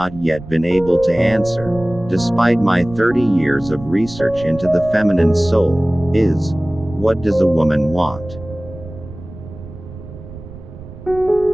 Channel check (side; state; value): right; noise; rumble, 15 dB below the sound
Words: yet been able to answer, despite my 30 years of research into the feminine soul, is, what does a woman want?